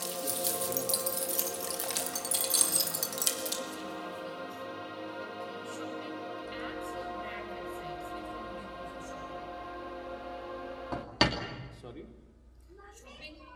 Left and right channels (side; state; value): both; identical; correlation 1.00